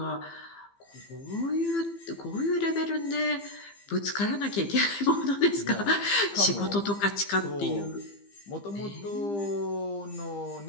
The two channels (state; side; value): late; right; 15 ms